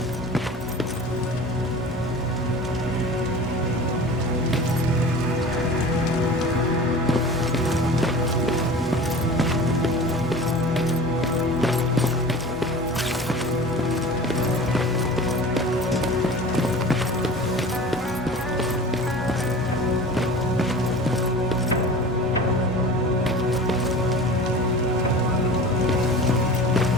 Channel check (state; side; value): normal; both; correlation 0.37